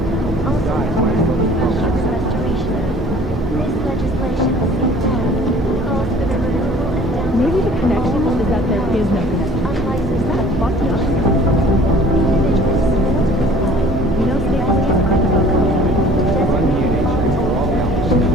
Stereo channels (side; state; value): both; normal; correlation 0.50